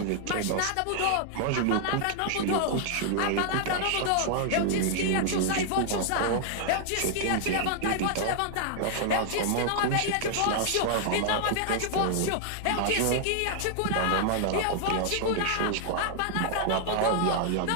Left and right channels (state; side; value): different; both; correlation 0.00